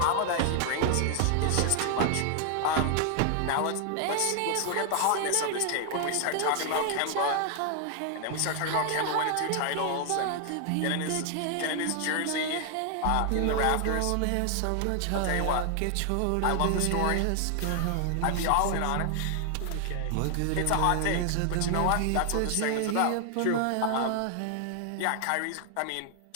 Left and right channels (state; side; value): different; both; correlation 0.00